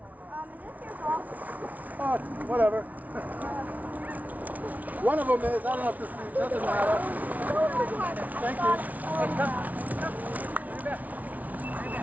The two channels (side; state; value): left; late; 0.073 ms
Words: your ball? Oh, whatever. One of them is. I don't know if this doesn't matter. Thank you.